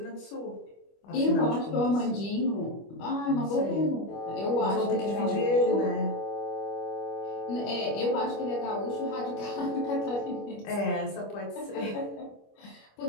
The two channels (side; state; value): right; late; 25 ms